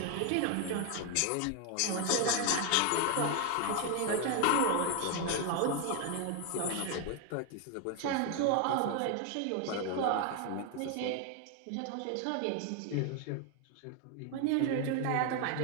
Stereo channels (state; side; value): different; both; correlation 0.01